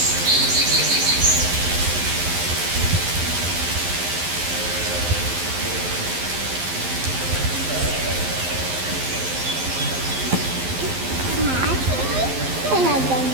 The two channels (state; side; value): late; left; 11 ms